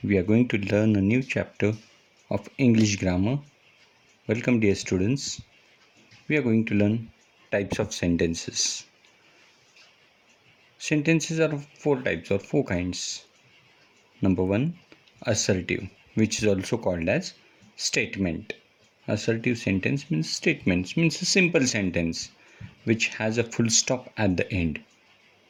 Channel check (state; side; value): identical; both; correlation 1.00